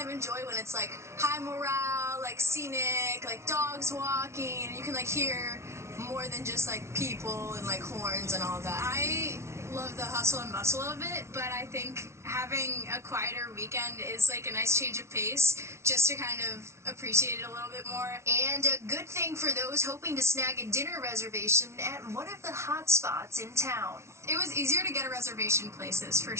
of enjoy when it's like high morale, like scenic, like dogs walking, and you can like hear more than just like people and like horns and all that. I love the hustle and bustle of it, but I think having a quieter weekend is like a nice change of pace just to kind of appreciate it a little bit more. And a good thing for those hoping to snag a dinner reservation at one of the hot spots in town. It was easier to get a reservation places, for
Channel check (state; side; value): late; left; 0.13 ms